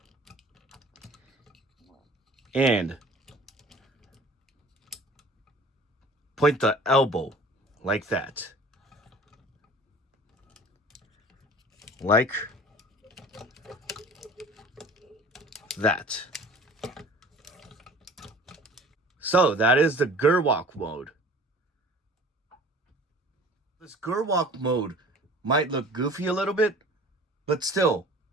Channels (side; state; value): both; normal; correlation 0.45